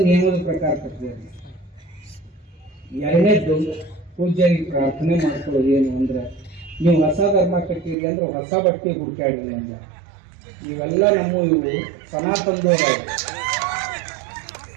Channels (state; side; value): drops out; left; at 8.0 s